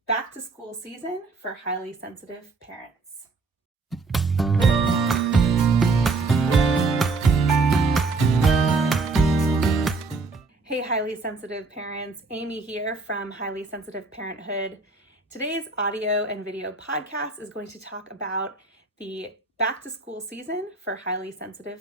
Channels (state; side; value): quieter; left; 3.9 dB